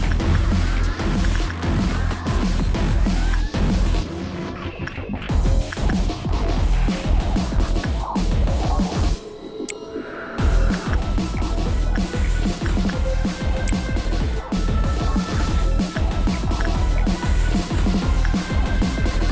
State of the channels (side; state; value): both; identical; correlation 1.00